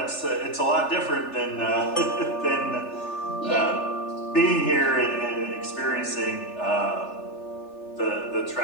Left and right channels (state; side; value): late; right; 3.4 ms